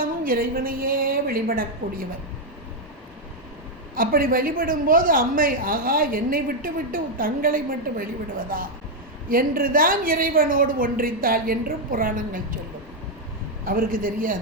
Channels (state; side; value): normal; both; correlation 0.01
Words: இறைவனையே வழிபடக்கூடியவர். அப்படி வழிபடும்போது அம்மை, ஆகா என்னை விட்டு விட்டு தங்களை மட்டும் வழிபடுவதா என்றுதான் இறைவனோடு ஒன்றித்தாள் என்றும் புராணங்கள் சொல்லும். அவருக்கு